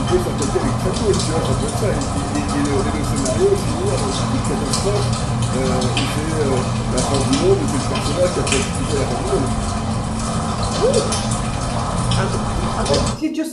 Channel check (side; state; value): both; identical; correlation 1.00